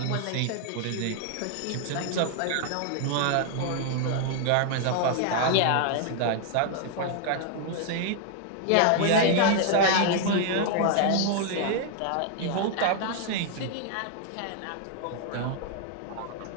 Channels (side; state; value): both; different; correlation 0.00